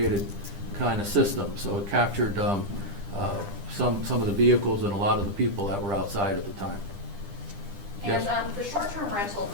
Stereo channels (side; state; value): left; late; 10 ms